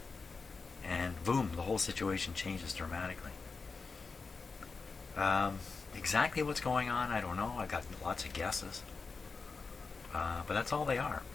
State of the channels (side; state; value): right; quieter; 4.5 dB